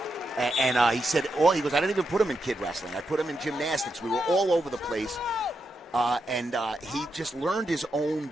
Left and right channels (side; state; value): both; normal; correlation 0.84